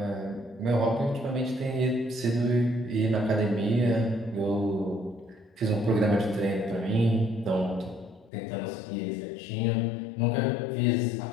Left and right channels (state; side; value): drops out; right; at 8.3 s